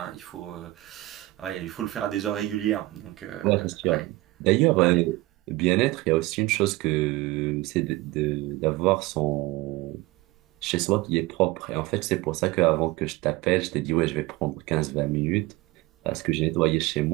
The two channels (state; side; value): quieter; left; 19.6 dB